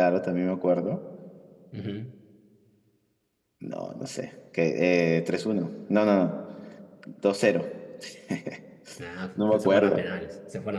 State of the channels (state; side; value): identical; both; correlation 1.00